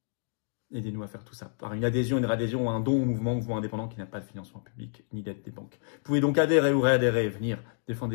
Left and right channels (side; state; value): right; silent; digital silence